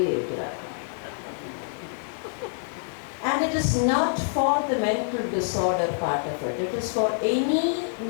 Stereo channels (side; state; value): right; silent; digital silence